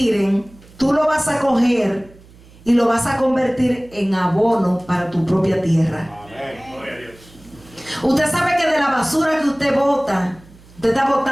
tú lo vas a coger y lo vas a convertir en abono para tu propia tierra. Amén. Usted sabe que de la basura que usted bota, usted está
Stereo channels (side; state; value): right; noise; hum, 24 dB below the sound